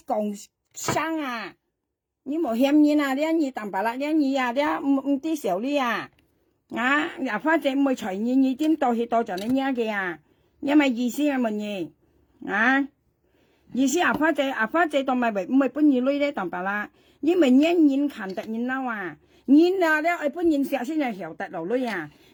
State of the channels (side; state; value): both; identical; correlation 1.00